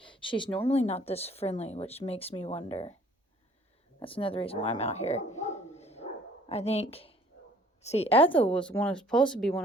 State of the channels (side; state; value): both; normal; correlation 0.56